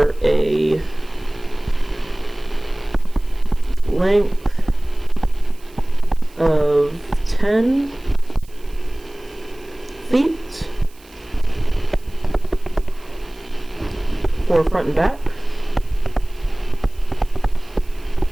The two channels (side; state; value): right; noise; hiss, 27 dB below the sound